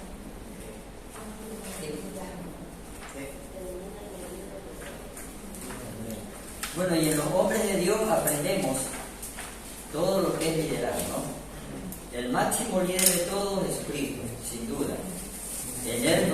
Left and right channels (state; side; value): identical; both; correlation 1.00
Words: Bueno, y en los hombres de Dios aprendemos todo lo que es liderazgo, ¿no? El máximo líder de todos es Jesucristo, sin duda. En él